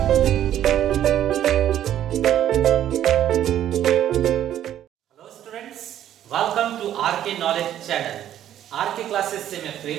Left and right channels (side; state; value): left; quieter; 11.3 dB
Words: students, welcome to RK knowledge channel. RK classes से मैं